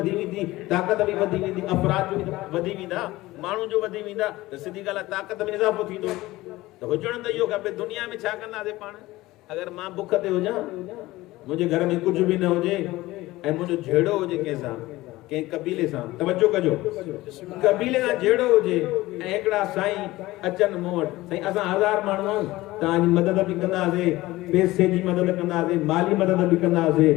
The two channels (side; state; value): right; quieter; 18.3 dB